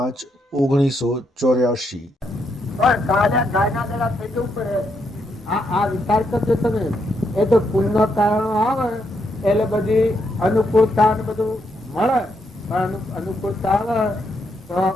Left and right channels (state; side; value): normal; both; correlation 0.78